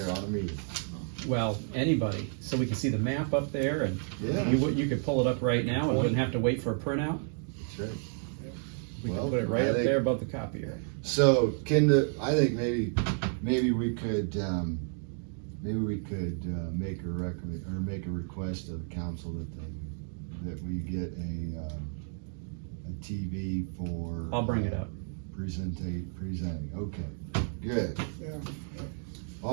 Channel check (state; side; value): silent; left; 57 dB below the other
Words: on a meeting. Well, anybody, so we can see the map up there, and Yeah. you could pull it up right now and wouldn't have to wait for a printout. That's right. We Well, can put it right I up think- there above the copier. So, I think maybe we could, make a make a request of the council that we get a TV for. I'll bring it up. Presenting, okay, good, Yeah,